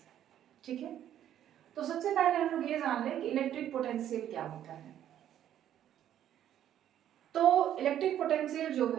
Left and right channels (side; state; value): left; quieter; 11.0 dB